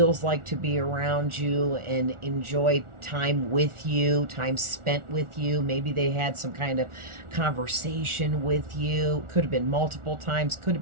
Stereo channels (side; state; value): left; late; 1.4 ms